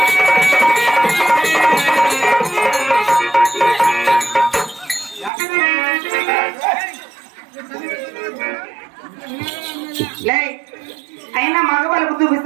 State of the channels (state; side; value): drops out; left; at 5.3 s